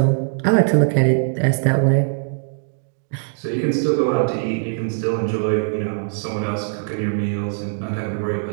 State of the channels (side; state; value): left; silent; 62 dB below the other